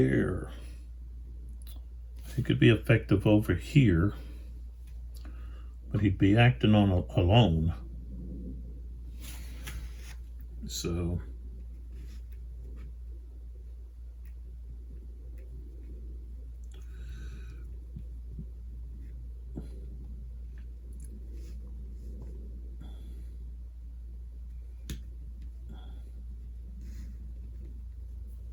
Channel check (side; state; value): both; identical; correlation 1.00